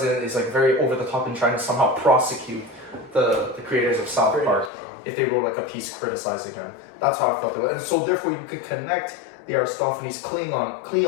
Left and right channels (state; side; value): drops out; right; at 4.7 s